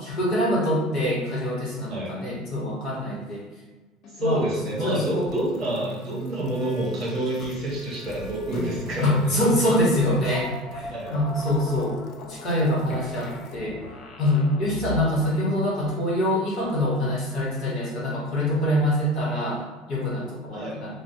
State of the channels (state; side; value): normal; both; correlation 0.33